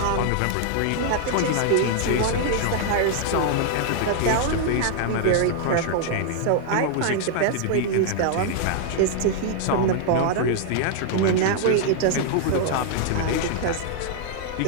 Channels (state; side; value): different; both; correlation -0.01